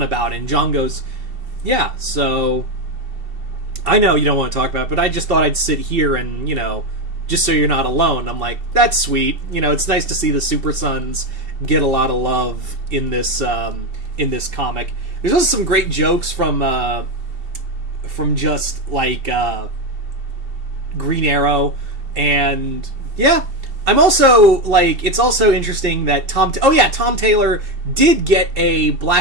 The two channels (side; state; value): left; late; 2.7 ms